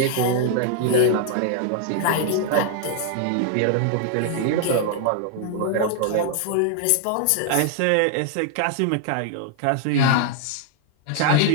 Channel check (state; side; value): different; both; correlation -0.01